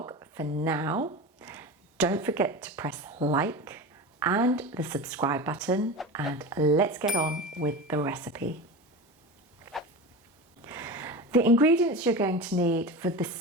For now, don't forget to press like and the subscribe button, and let's get on with the recipe. The ingredients you're going to need for the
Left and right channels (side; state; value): both; normal; correlation 0.27